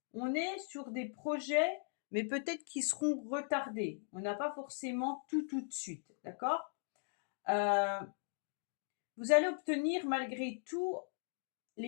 on est sur des projets, mais peut-être qui seront retardés. On n'a pas forcément tout de suite. D'accord? Euh, Vous allez obtenir malgré tout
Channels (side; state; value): right; silent; digital silence